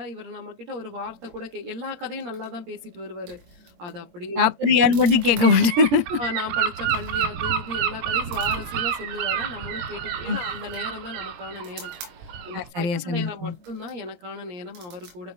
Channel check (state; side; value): late; left; 17 ms